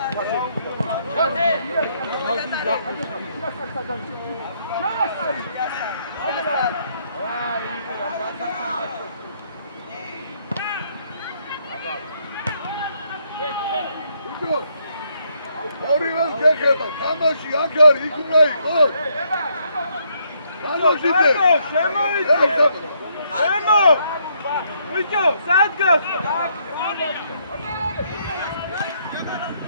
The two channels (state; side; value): inverted; both; correlation -0.72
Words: ორივე გეხება, თამაში აქ არის, იქ უნდა იყოს. განოშიდე. შემოიწე. შემო. ვიჭო, სად გას?